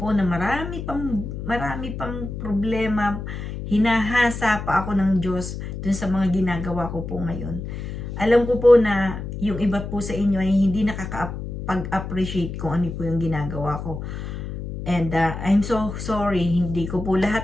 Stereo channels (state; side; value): noise; left; hum, 7 dB below the sound